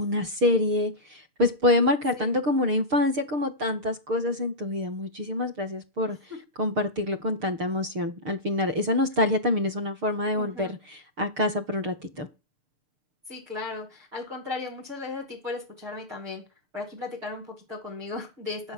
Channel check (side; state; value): left; late; 6.6 ms